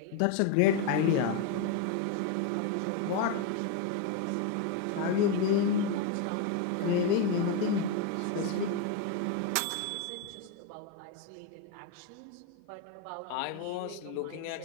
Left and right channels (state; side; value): different; both; correlation 0.02